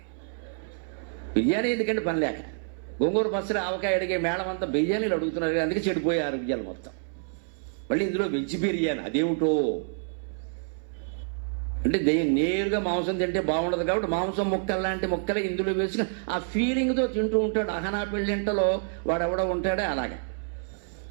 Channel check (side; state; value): left; silent; 60 dB below the other